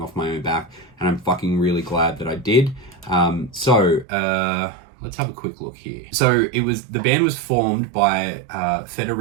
my own back, and I'm fucking really glad that I did. Let's have a quick look here. So the band was formed by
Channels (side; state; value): left; drops out; at 4.0 s